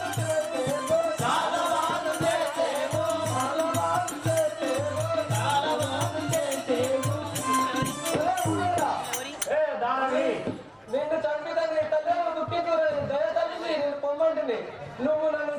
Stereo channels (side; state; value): both; identical; correlation 1.00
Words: నిన్ను చంపిదని తల్లి దుఃఖించుకుని దయతల్లి నేను పొమ్మంటిని. నువ్వు నన్ను